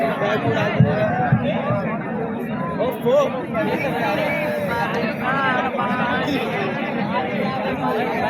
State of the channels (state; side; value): identical; both; correlation 1.00